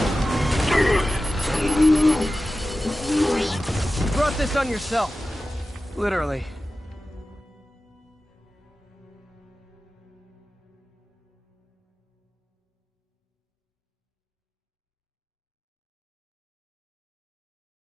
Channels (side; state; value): both; normal; correlation 0.95